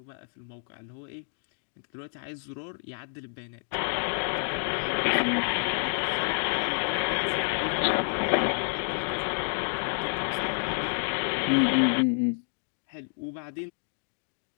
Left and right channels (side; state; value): right; silent; digital silence